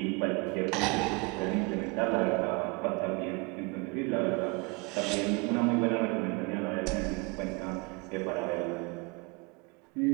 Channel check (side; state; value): left; quieter; 29.2 dB